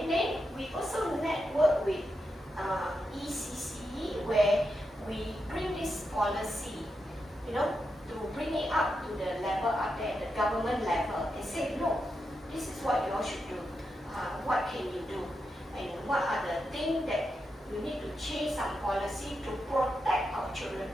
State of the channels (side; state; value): both; normal; correlation 0.86